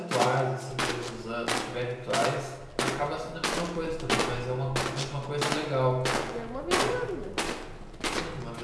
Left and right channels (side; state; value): both; identical; correlation 1.00